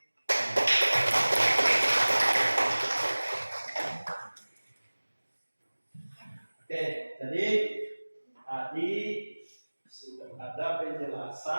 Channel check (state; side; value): inverted; both; correlation -1.00